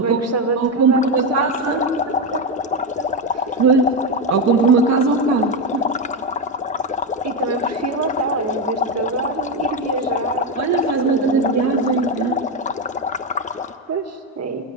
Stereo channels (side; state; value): both; normal; correlation 0.10